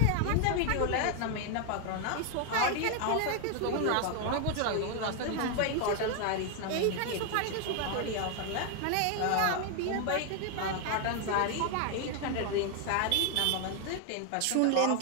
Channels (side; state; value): both; different; correlation 0.01